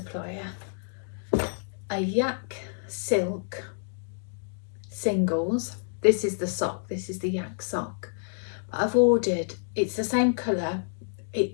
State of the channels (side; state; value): right; silent; digital silence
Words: a yak silk singles. This is the sock, this is the yak sock. But I've ordered, it's the same colour,